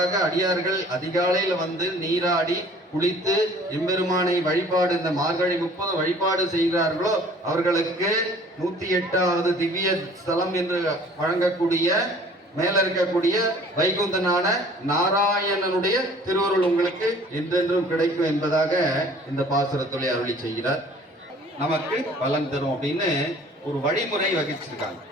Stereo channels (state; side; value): normal; both; correlation 0.52